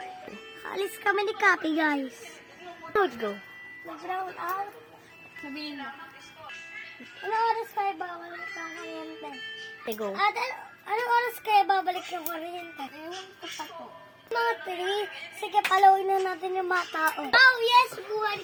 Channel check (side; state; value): both; identical; correlation 1.00